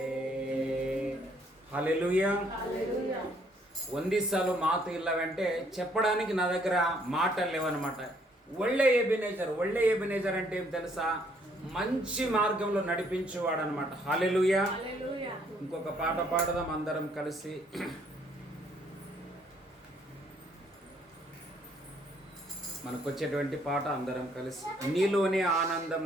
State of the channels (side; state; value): both; normal; correlation 0.66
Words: హల్లెలూయా. ಒಂದೇ సాలు మాత ఇల్లవంటే చెప్పడానికి నా దగ్గర మాటలు లేవన్నమాట. ఒళ్ళే ఎబినేజర్ అంటే ఏం తెలుసా? మంచి మార్గంలో నడిపించేవాడు అనమాట. హల్లెలూయా. ఇంకొక పాట పాడదాం అందరం కలిసి. మనకు వచ్చేటువంటి పాట అందరం కలిసి. నీలోనే ఆనందం